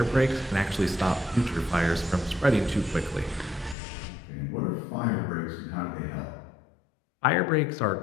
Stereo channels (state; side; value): drops out; right; at 3.8 s